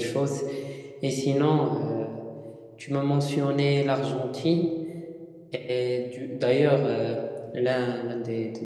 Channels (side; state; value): both; identical; correlation 1.00